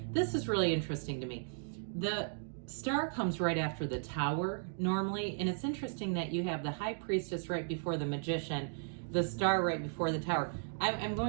This is really interesting to me. The Star comes right after the Tower normally, and it's interesting that you have the High Priestess right before the Magician, the Star right before the Tower. I'm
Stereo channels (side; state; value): left; silent; digital silence